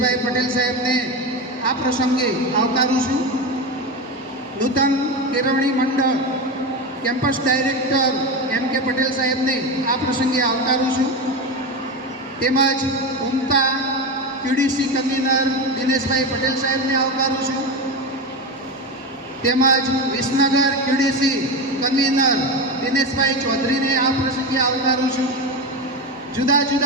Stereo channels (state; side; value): normal; both; correlation 0.19